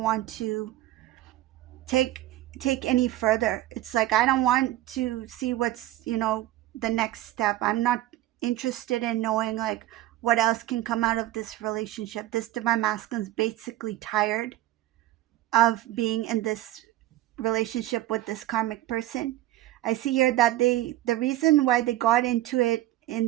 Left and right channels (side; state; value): left; quieter; 15.2 dB